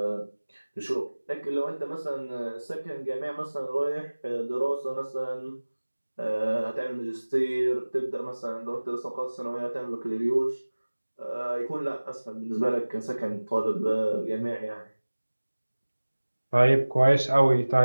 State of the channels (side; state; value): both; inverted; correlation -1.00